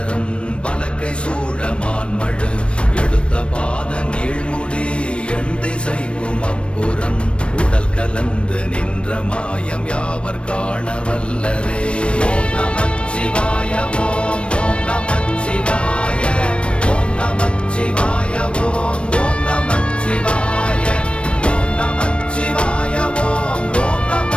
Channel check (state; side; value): late; right; 0.059 ms